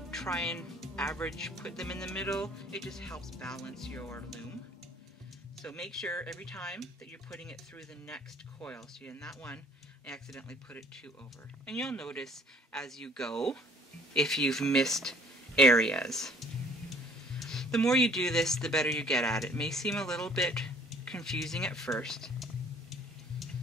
try and average, put them in the middle. It just helps balance your loom. So make sure every time that you're putting it through the next coil. So in that one, I accidentally put it 2 over. And you'll notice as you go if you've missed areas. The more you do this, the better you get at it. It may seem a little bit confusing at first,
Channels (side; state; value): both; normal; correlation 0.56